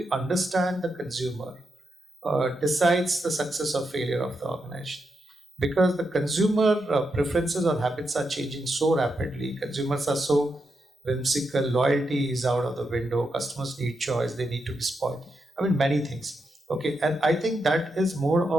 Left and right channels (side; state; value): both; normal; correlation 0.84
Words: understand the consumer decides the success or failure of the organization. Because the consumer preferences or habits are changing so rapidly, consumers are so whimsical, loyalty is out of the window, customers need choice, they need to be spoiled. I mean, many things. Okay, and I think that is more